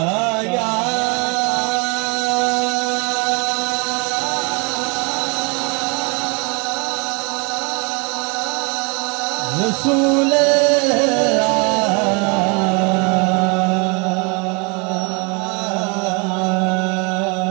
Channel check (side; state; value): left; quieter; 32.0 dB